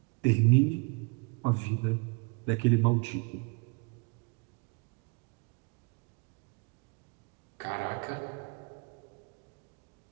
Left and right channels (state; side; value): quieter; left; 31.5 dB